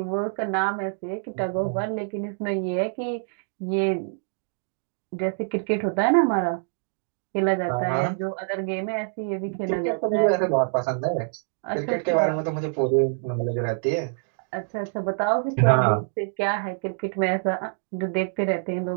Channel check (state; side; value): silent; left; digital silence